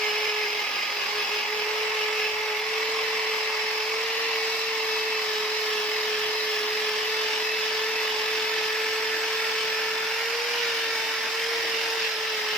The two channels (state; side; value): normal; both; correlation 0.48